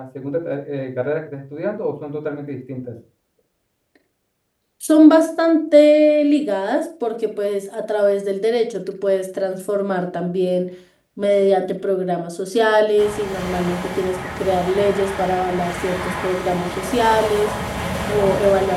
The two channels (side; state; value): both; identical; correlation 1.00